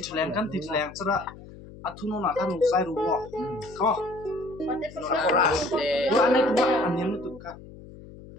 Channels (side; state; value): left; noise; hum, 17 dB below the sound